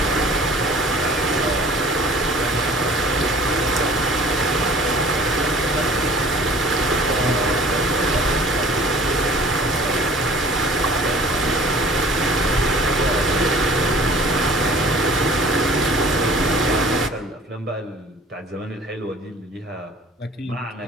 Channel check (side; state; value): both; normal; correlation 0.49